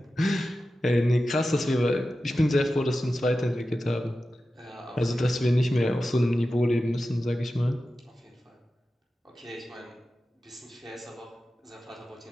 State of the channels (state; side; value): normal; both; correlation 0.93